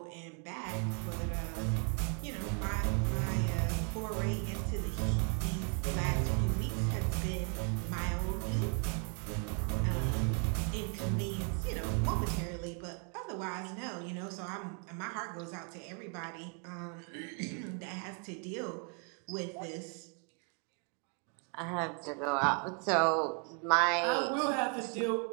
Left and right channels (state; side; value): quieter; left; 37.5 dB